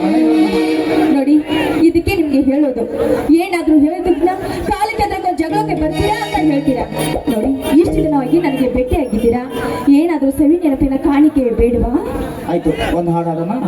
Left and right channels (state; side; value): identical; both; correlation 1.00